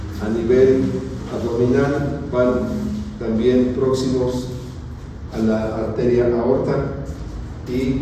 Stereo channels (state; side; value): identical; both; correlation 1.00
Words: A nivel abdominal van también próximos a la arteria aorta